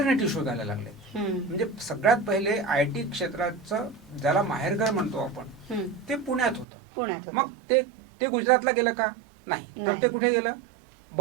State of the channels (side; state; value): left; drops out; at 6.7 s